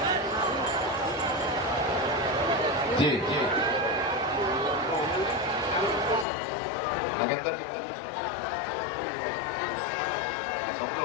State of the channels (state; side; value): drops out; right; at 6.2 s